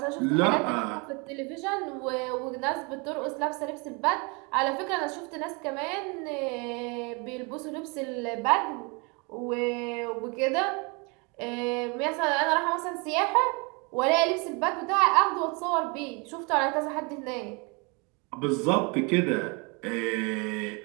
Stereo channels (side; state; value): left; quieter; 30.6 dB